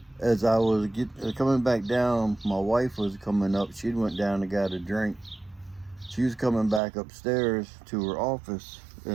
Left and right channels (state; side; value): drops out; left; at 6.8 s